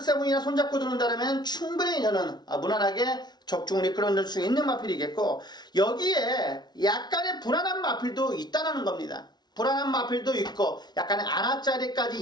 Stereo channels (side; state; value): right; late; 0.20 ms